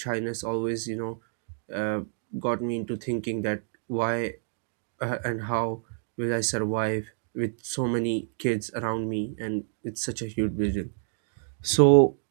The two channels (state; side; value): silent; left; digital silence